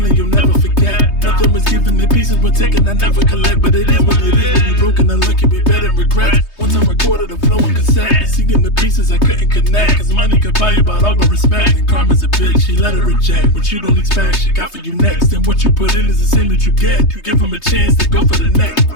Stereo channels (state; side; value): late; right; 3.2 ms